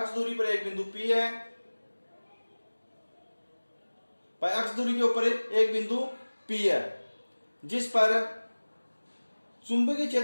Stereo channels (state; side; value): inverted; both; correlation -1.00